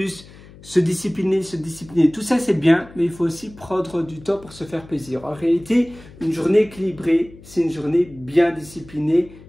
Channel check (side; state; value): left; noise; hum, 20 dB below the sound